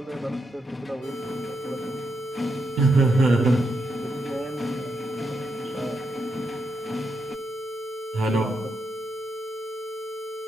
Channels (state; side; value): normal; both; correlation 0.82